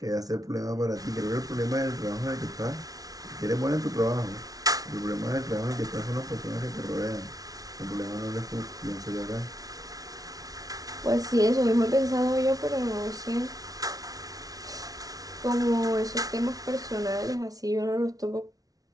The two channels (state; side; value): late; left; 0.18 ms